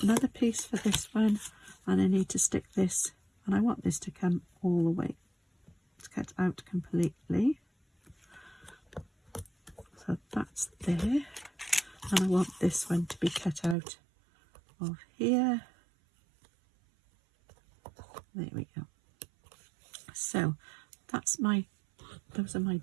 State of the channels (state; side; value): drops out; left; at 13.8 s